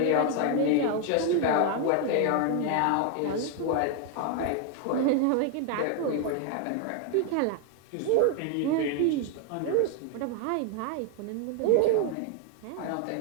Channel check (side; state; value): both; different; correlation 0.00